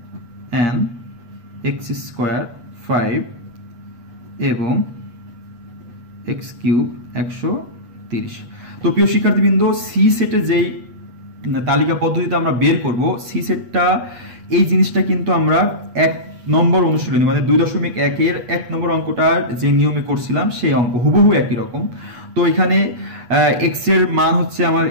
n x স্কয়ার 5 এবং x কিউব 130। তো প্রিয় শিক্ষার্থীবৃন্দ, সি সেটে যেই তালিকা পদ্ধতিতে আমরা বের করব, সি সেটটা এই জিনিসটা কিন্তু আমরা 1 নম্বর অনুশীলনী মানে 2.1 এর 1 নম্বর অঙ্কটা যে নিয়মে করছিলাম সেই অঙ্ক হুবহু একই রকম। তো এখানে x এর মান হচ্ছে আমার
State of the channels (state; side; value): late; left; 8.2 ms